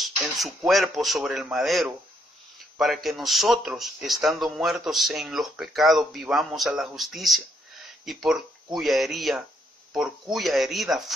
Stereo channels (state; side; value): normal; both; correlation 0.73